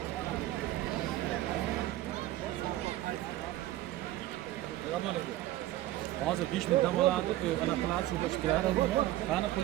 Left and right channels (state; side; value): quieter; left; 15.4 dB